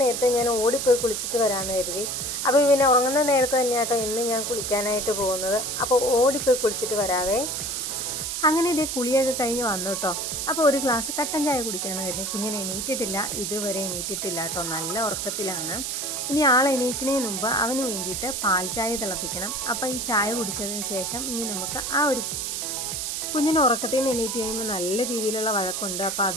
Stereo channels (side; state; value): right; noise; hiss, 3 dB below the sound